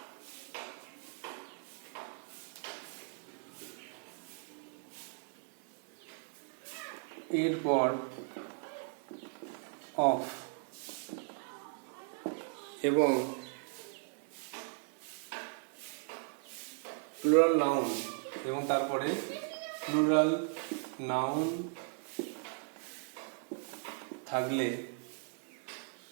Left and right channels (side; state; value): left; silent; 53 dB below the other